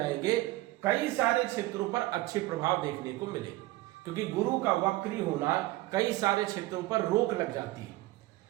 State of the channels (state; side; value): quieter; left; 18.2 dB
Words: कई सारे क्षेत्रों पर अच्छे प्रभाव देखने को मिले क्योंकि गुरु का वक्री होना कई सारे क्षेत्रों पर रोक लग जाती है।